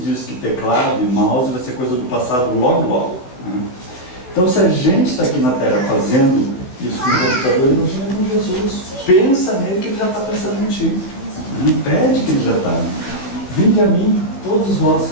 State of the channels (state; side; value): late; right; 16 ms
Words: diz que teclado e mouse vai ser coisa do passado logo, né? Então se a gente está aqui na Terra fazendo isso com o computador, imagina com Jesus. Pensa nele que ele já está pensando em ti. Pede que ele já está. Vinde a mim, todos vós